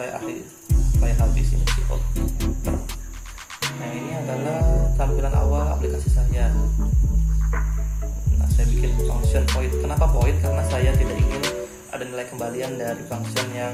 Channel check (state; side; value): identical; both; correlation 1.00